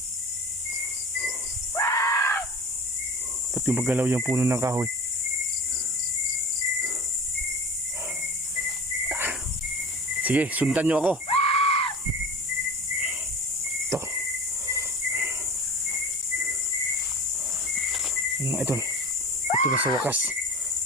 Ba't yung magalaw yung puno ng kahoy? Sige, sundan nyo ako. Ito. Ano mga idol? Ito na sa wakas.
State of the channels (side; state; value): both; normal; correlation 0.35